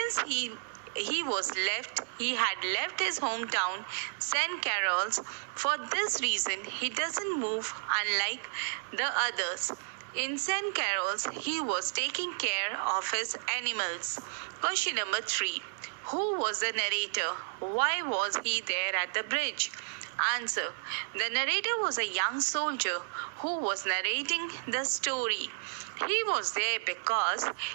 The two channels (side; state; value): left; silent; 56 dB below the other